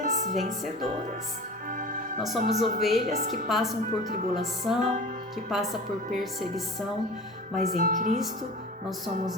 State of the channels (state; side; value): normal; both; correlation 0.37